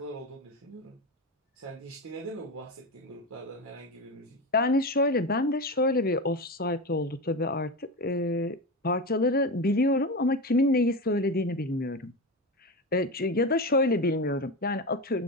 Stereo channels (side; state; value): both; normal; correlation 0.20